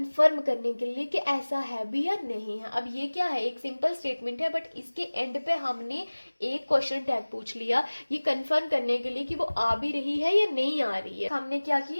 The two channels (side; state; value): both; inverted; correlation -1.00